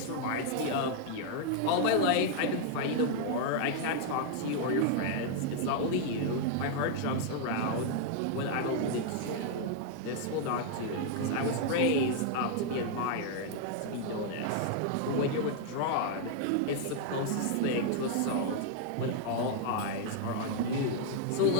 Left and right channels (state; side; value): different; both; correlation 0.00